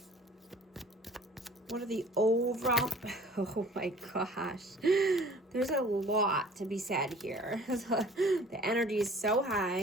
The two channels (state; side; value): normal; both; correlation 0.49